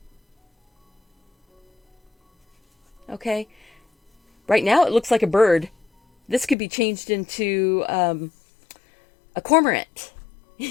Okay, right now it looks like a bird. This could be changed into a cormorant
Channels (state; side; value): drops out; right; at 6.6 s